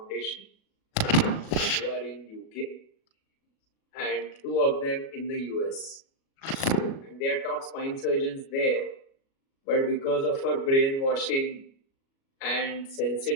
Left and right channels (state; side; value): late; right; 37 ms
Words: who are in UK and 2 of them in the US. And they are top spine surgeons there, but because of our brainwashing and